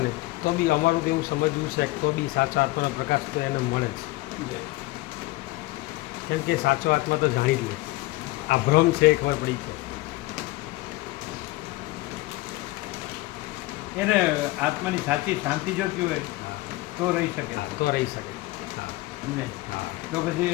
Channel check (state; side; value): quieter; right; 19.5 dB